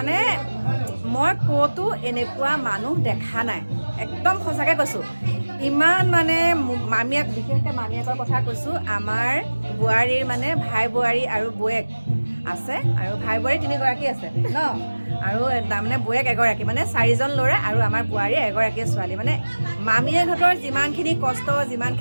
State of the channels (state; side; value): inverted; both; correlation -1.00